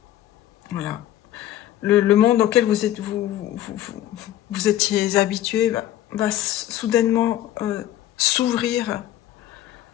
Voilà. Le monde auquel vous étiez habitué va soudainement s'ouvrir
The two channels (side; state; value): right; quieter; 13.0 dB